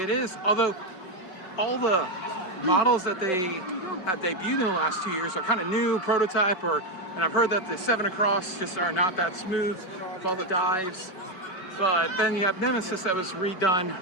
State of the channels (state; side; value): late; right; 5.3 ms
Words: it is. Although all the models that they have debuted in the last 2 years are kind of new, prototype, and I've heard that the 7 Across just are not that smooth with all the dives. But then you have Nemesis that was